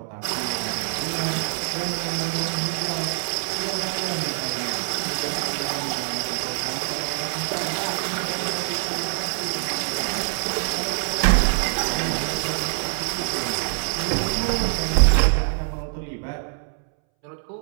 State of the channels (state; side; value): silent; left; 62 dB below the other